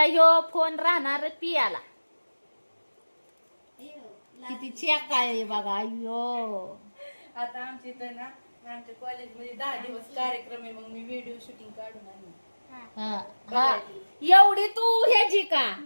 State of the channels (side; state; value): both; inverted; correlation -1.00